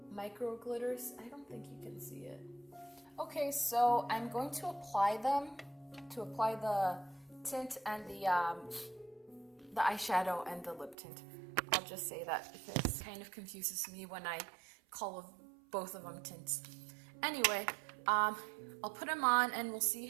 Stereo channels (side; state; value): left; drops out; at 11.0 s